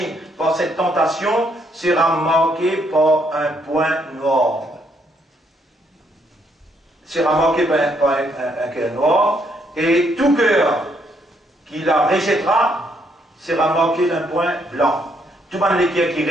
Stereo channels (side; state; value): both; normal; correlation 0.72